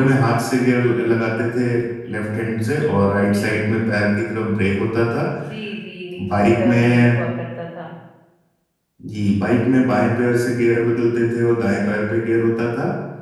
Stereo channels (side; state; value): both; identical; correlation 1.00